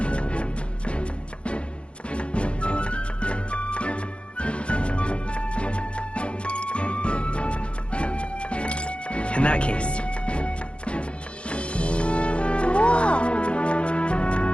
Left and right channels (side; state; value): right; late; 0.059 ms